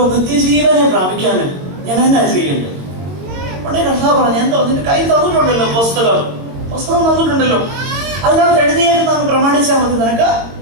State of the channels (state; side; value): late; left; 22 ms